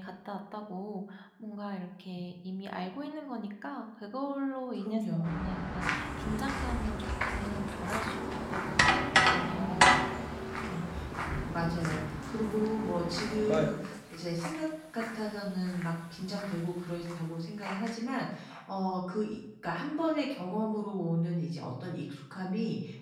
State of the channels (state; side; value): identical; both; correlation 1.00